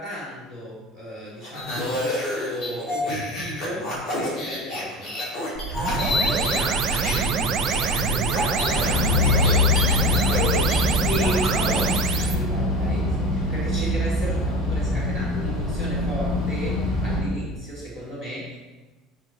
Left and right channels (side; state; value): both; normal; correlation 0.33